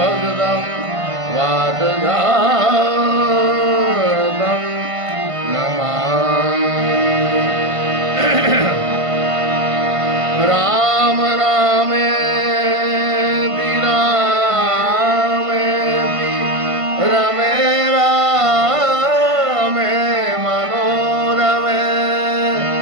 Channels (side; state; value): left; late; 1.5 ms